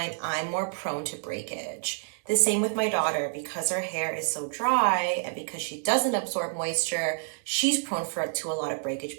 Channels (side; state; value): left; silent; digital silence